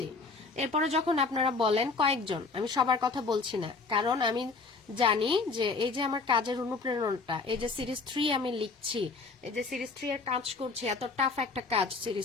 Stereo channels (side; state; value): right; quieter; 4.1 dB